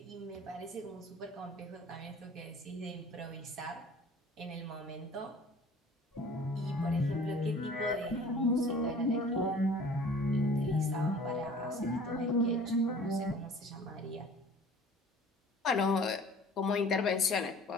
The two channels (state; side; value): normal; both; correlation 0.47